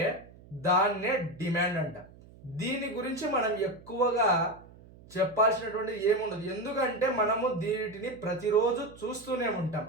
దాన్నే డిమాండ్ అంట. దీని గురించి మనం ఎక్కువగా చెప్పాల్సినటువంటి ఏముండదు, ఎందుకంటే మనము దీనిని ప్రతిరోజు చూస్తూనే ఉంటాం.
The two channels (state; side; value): noise; right; hum, 22 dB below the sound